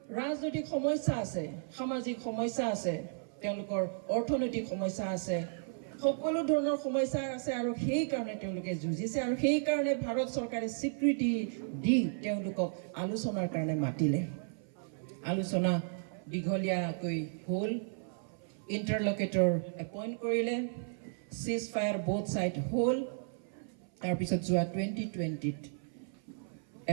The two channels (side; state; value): left; silent; 55 dB below the other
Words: ৰাজনৈতিক সমস্যা আছে, সামাজিক সমস্যা আছে, তেওঁলোকৰ অৰ্থনৈতিক সমস্যা আছে, সকলো ধৰণৰ সমস্যা আছে। আৰু সেইকাৰণে তেওঁলোকে যুঁজিছে। আৰু সেইকাৰণে ভাৰত চৰকাৰে স্বীকৃতি দি তেওঁলোকক আলোচনাৰ কাৰণে মাতিলে। আলোচনা দীঘলীয়াকৈ হ'ল, ইণ্টাৰলকেটৰ এপইণ্ট কৰিলে, চিজ ফায়াৰ বোথ ছাইড হ'ল। তাৰপিছত যোৱা 2020ত